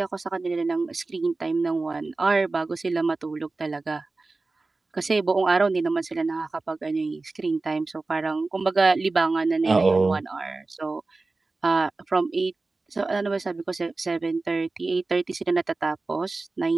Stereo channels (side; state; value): left; quieter; 3.5 dB